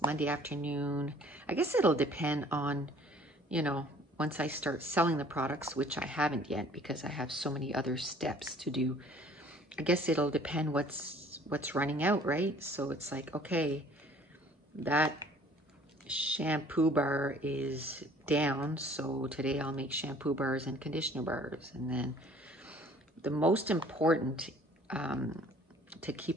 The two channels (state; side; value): normal; both; correlation 0.54